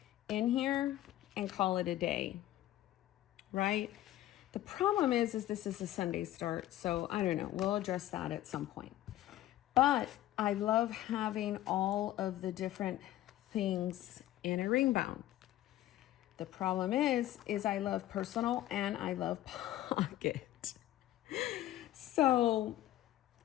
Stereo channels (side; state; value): right; quieter; 14.0 dB